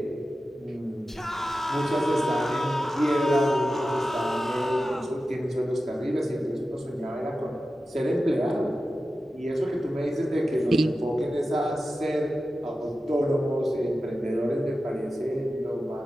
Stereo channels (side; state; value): both; normal; correlation 0.93